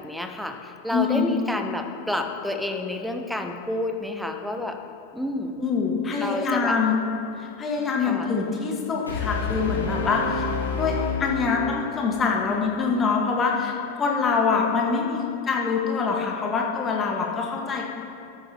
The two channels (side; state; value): right; quieter; 4.2 dB